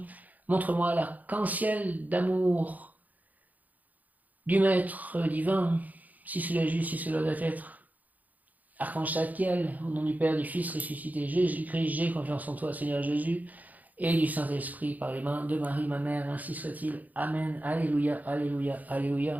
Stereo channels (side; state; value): left; late; 0.079 ms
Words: Montre-moi l'arc-en-ciel d'amour du Maître divin, si cela est juste, si cela doit être. Archange Tzadkiel, au nom du Père, du Fils ressuscité Jésus-Christ, j'ai confiance en toi, Seigneur Jésus, et du Saint-Esprit par les mains de Marie, ma mère, ainsi soit-il. Amen. Alléluia, alléluia,